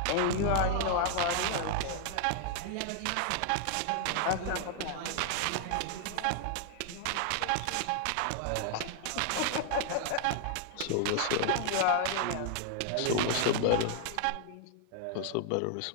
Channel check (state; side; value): different; both; correlation 0.00